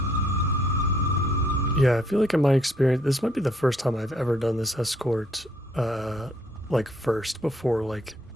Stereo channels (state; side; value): normal; both; correlation 0.67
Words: Yeah, I feel like in my experience, this might be the first time I've ever done this escort, like first before like